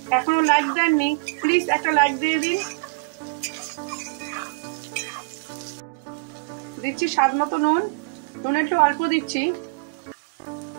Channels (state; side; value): quieter; left; 31.9 dB